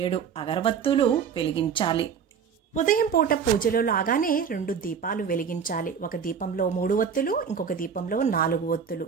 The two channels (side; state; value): left; quieter; 6.9 dB